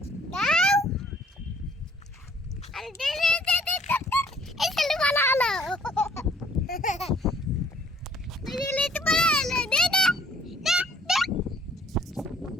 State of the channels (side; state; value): both; normal; correlation 0.61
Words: দাও আরে দে দে দে দে এই চলো ভালো হলো এই লেট ভালো হলো দে দে দে দে